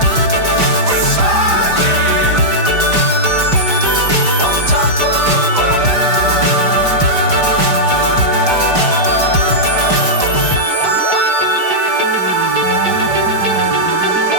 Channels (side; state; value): left; late; 5.0 ms